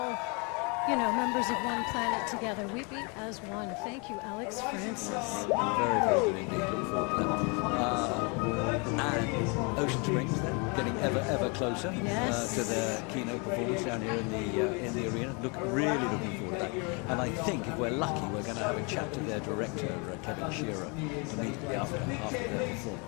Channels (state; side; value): quieter; right; 32.4 dB